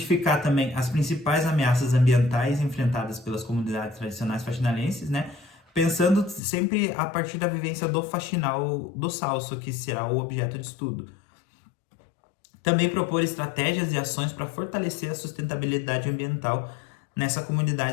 também as principais ameaças ambientais enfrentadas pelas comunidades tradicionais faxinalenses, né? Pensando sempre a partir da vivência do faxinal do Salso, que será o objeto de estudo. Também propor estratégias e ações para fortalecer a sustentabilidade ambiental nessa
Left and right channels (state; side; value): drops out; right; at 6.4 s